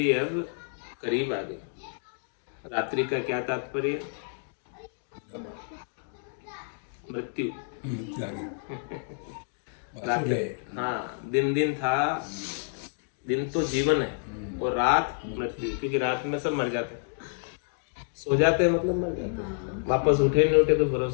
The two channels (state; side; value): silent; right; digital silence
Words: अब करीब आ गई। रात्रि का क्या तात्पर्य? मृत्यु। रात्रि, हाँ, दिन दिन था, दिन तो जीवन है और रात मृत्यु, क्योंकि रात में सब मर जाते हैं। सो जाते हैं मतलब मर जाते हैं, वापस उठे नहीं उठे तो